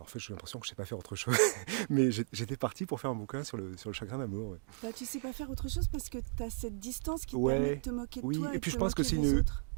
en fait, j'ai l'impression que je sais pas faire autre chose. Mais j'étais parti pour faire un bouquin sur le chagrin d'amour. Ouais. Bah, tu sais pas faire autre chose parce que tu as cette distance qui te permet de Ouais, te moquer de oui, toi et et de puis te moquer des autres.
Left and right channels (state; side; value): silent; left; digital silence